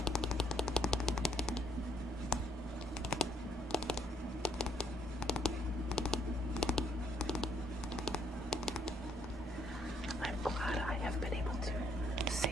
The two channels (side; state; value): both; normal; correlation 0.69